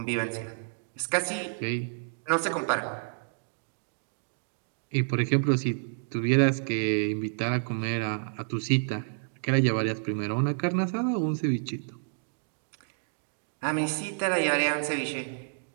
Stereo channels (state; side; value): silent; left; digital silence